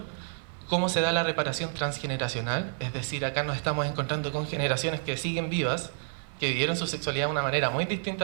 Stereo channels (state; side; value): silent; left; digital silence